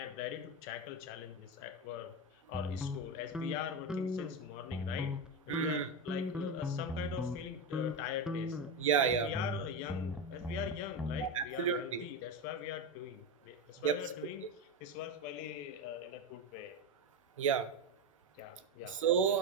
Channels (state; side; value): normal; both; correlation 0.14